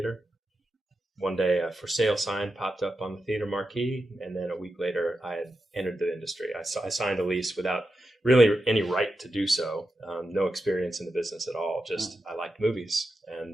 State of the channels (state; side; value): normal; both; correlation 0.89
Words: One day, a for sale sign popped up on the theater marquee, and then a week later, I had entered the industry. I signed a lease without really any right to do so. No experience in the business at all. Just I liked movies,